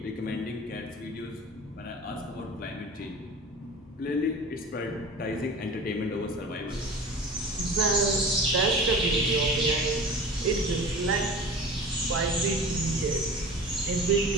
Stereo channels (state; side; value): normal; both; correlation 0.37